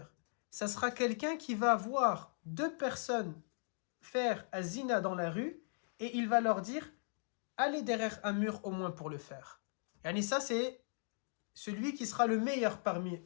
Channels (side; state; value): right; silent; digital silence